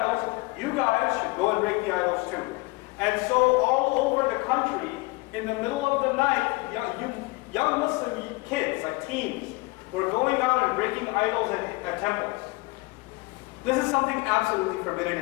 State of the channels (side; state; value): right; quieter; 24.3 dB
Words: you guys should go and break the idols too. And so all over the country, in the middle of the night, young Muslim kids, like teens, were going out and breaking idols at temples. This is something absolutely